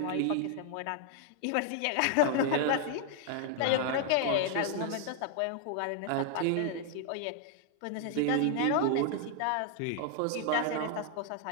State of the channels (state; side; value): different; both; correlation 0.00